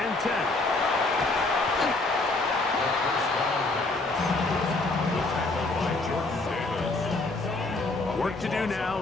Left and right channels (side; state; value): right; quieter; 3.2 dB